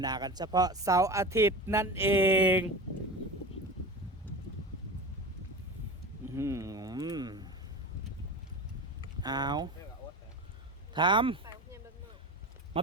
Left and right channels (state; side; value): normal; both; correlation 0.30